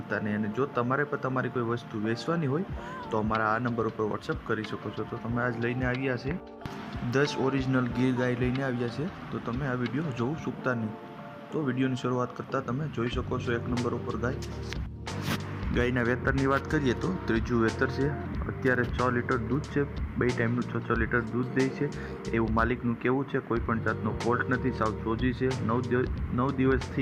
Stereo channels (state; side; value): identical; both; correlation 1.00